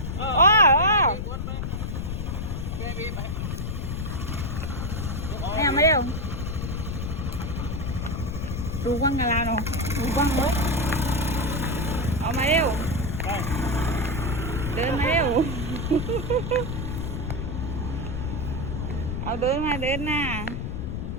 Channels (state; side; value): noise; left; rumble, 3 dB below the sound